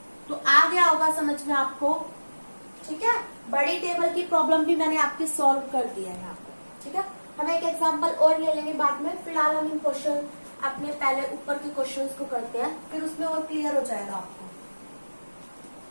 तो आ गया होगा समझ में आपको, ठीक है। बड़ी टेबल की प्रॉब्लम भी मैंने आपकी सॉल्व कर दिया है यहाँ पे, ठीक है। हम एक एग्जांपल और ले लेंगे बाद में, फिलहाल हम इन क्वेश्चन अपने पहले ऊपर के क्वेश्चंस को करते हैं, फिर उसमें और क्लियर हो जाएगा आपको।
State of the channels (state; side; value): inverted; both; correlation -1.00